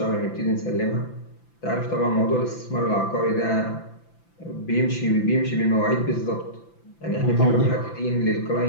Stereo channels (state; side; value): late; right; 5.9 ms